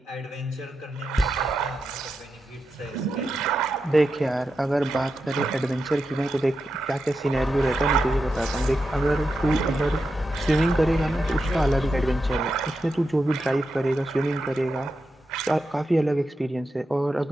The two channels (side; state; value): both; normal; correlation 0.88